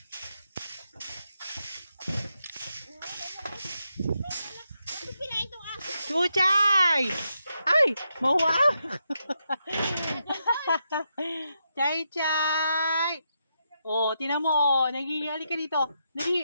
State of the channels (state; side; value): inverted; both; correlation -0.83